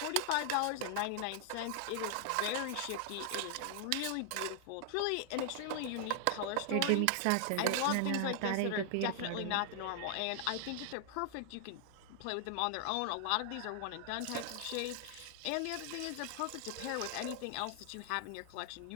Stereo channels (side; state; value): both; different; correlation 0.00